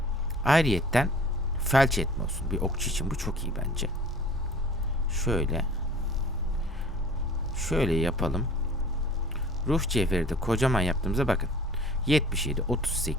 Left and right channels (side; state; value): both; normal; correlation 0.47